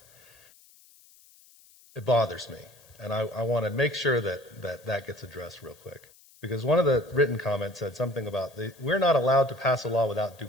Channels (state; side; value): noise; left; hiss, 26 dB below the sound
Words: it bothers me. And I want to make sure that gets addressed real quick. Because one of the written comments said something about we're not allowed to pass a law without due